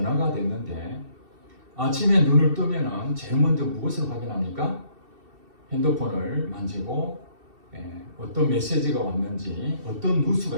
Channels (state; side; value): late; left; 2.7 ms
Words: 됐는데 아침에 눈을 뜨면은 제일 먼저 무엇을 확인합니까? 핸드폰을 만지고 어떤 메시지가 왔는지 어떤 뉴스가